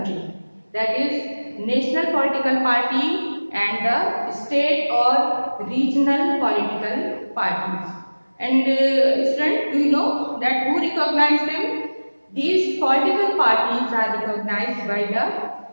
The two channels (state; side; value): inverted; both; correlation -1.00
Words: That is national political party and the state or regional political parties. And students, do you know that who recognize them? These political parties are recognized by the